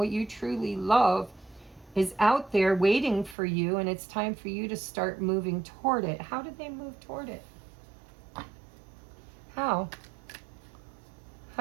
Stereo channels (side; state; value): left; drops out; at 3.4 s